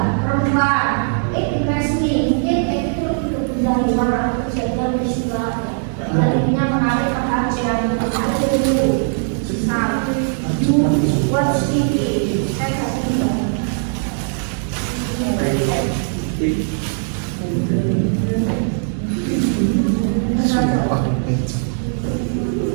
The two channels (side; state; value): left; silent; 66 dB below the other